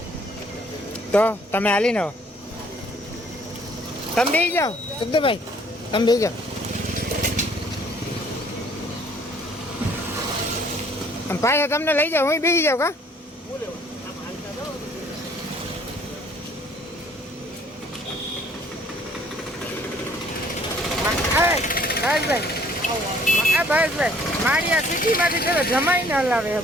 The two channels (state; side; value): normal; both; correlation 0.59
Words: તો તમે હાલી ને તમે બેસી જાઓ શબ્દભાઈ તમે બેસી જાઓ આમ પાછા તમને લઈ જાઓ હું બેસી જાઉં કા ભાઈ મારી આ સિટીમાંથી ચલો જમાઈને હલાવે છે,